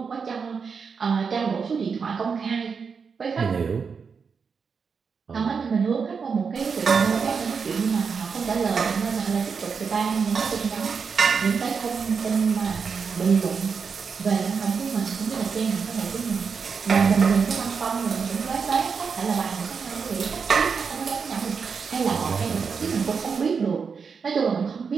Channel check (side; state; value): left; quieter; 5.7 dB